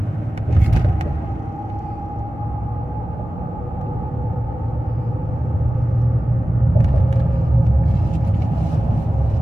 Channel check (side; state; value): both; normal; correlation 0.95